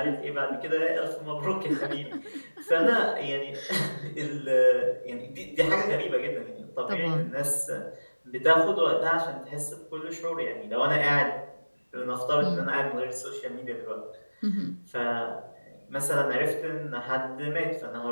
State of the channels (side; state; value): both; inverted; correlation -1.00